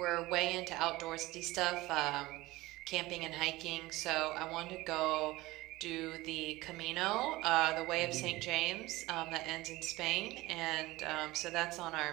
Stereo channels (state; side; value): quieter; left; 19.4 dB